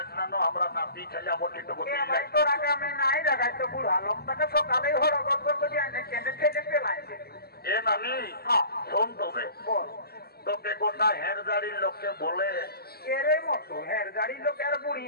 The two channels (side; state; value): right; late; 0.46 ms